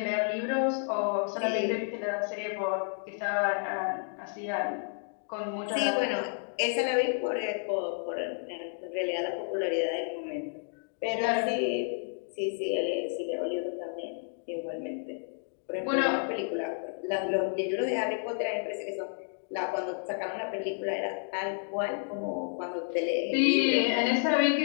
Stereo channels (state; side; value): silent; right; 57 dB below the other